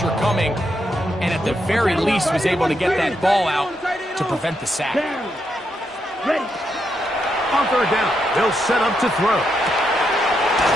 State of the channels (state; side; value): normal; both; correlation 0.81